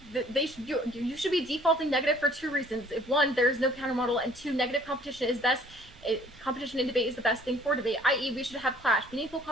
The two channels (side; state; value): right; noise; rumble, 28 dB below the sound